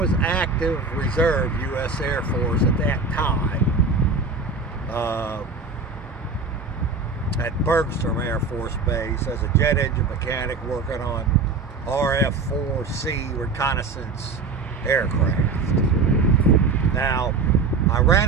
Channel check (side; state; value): left; quieter; 4.2 dB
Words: active reserve U.S. Air Force at that time at Bergstrom Air Force Base as a jet engine mechanic working on RF-4C reconnaissance aircraft. Now, I